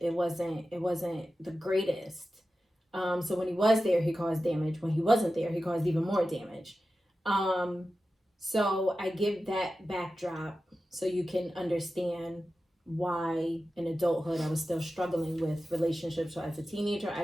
wasn't the greatest. So when he was there, he caused damage. When he wasn't there, he caused even more damage. So I give that backdrop so you can understand why in adulthood I was still struggling with relationships. So as a teenager, I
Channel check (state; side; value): normal; both; correlation 0.93